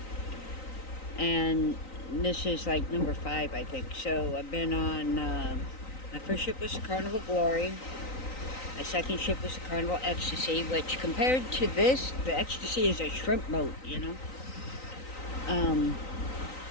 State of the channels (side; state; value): right; late; 3.9 ms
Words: And this is like number 5, I think. So I've been on, my first ship was the Carnival Glory. My second ship was the Carnival Ecstasy, which compared to this, the Ecstasy is a shrimp boat, you know.